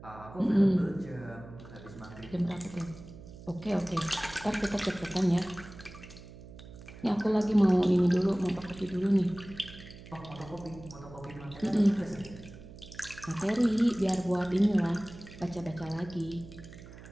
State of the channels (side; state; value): right; noise; hum, 17 dB below the sound